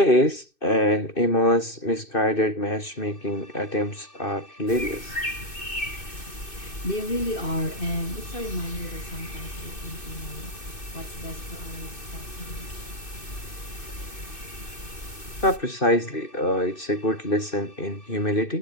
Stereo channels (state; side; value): late; right; 2.6 ms